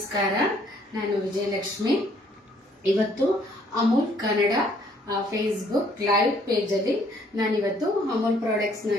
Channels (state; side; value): normal; both; correlation 0.64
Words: ನಾನು ವಿಜಯಲಕ್ಷ್ಮಿ. ಇವತ್ತು ಅಮೂಲ್ ಕನ್ನಡ ಫೇಸ್ಬುಕ್ ಲೈವ್ ಪೇಜಲ್ಲಿ ನಾನಿವತ್ತು ಅಮೂಲ್ ಪ್ರಾಡಕ್ಟ್ಸ್ನ